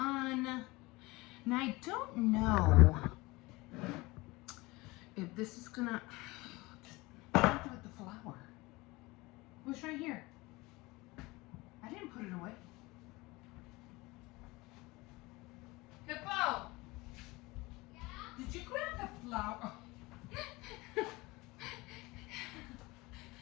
Now I don't know if this is gonna. What do I do with the flour? It was right here. I didn't put it away. Hippo! Yeah? Did you grab the flour?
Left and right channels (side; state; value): right; quieter; 22.3 dB